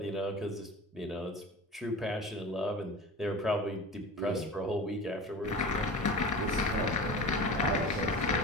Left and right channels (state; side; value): normal; both; correlation 0.34